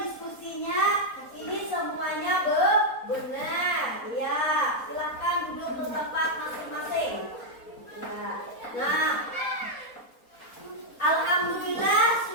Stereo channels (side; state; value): right; late; 4.1 ms